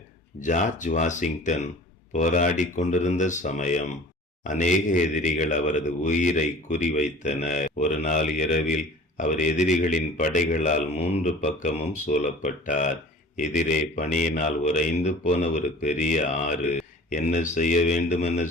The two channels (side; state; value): both; normal; correlation 0.44